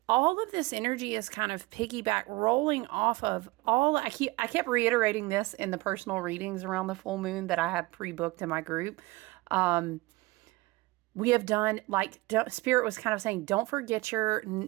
all of this energy is kind of piggyback rolling off of all. I kept reiterating this in the personal readings around the full moon that I have pre-booked in my group. We have done, like, Spirit was kind of saying, don't forget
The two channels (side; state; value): left; quieter; 21.7 dB